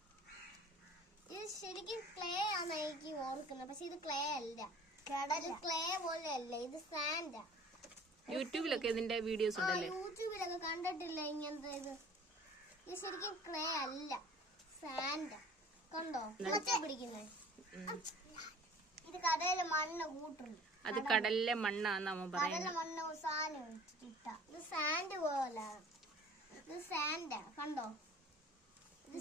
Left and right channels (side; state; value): both; normal; correlation 0.48